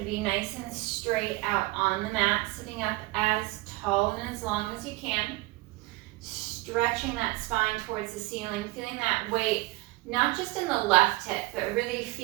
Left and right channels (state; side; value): quieter; left; 21.7 dB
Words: be nice and straight out on the mat, sitting up as tall and as long as you can. Stretching that spine towards the ceiling, feeling that weight, not just in the left hip, but really